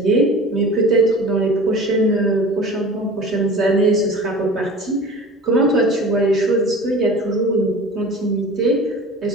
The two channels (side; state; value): both; normal; correlation 0.39